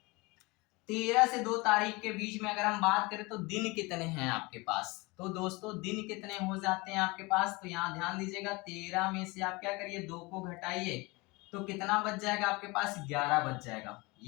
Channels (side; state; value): right; quieter; 24.8 dB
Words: 13 से 2 तारीख के बीच में अगर हम बात करें तो दिन कितने हैं आपके पास। तो दोस्तों दिन कितने हो जाते हैं आपके पास, तो यहाँ ध्यान दीजिएगा 13 में से आप क्या करिए, 2 को घटाइए, तो कितना बच जाएगा आपके पास, 11 बच जाएगा।